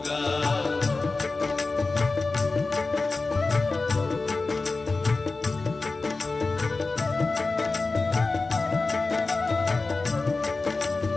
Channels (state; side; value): quieter; right; 3.7 dB